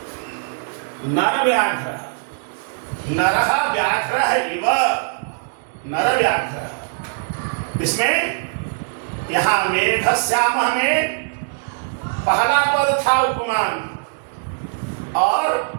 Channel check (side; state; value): left; silent; digital silence